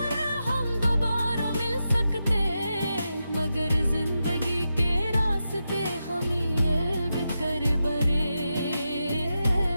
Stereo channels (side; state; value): both; inverted; correlation -0.89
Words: हम दोबारा मिल सकते, मगर जिंदगी के रास्ते हम ये कर बरे।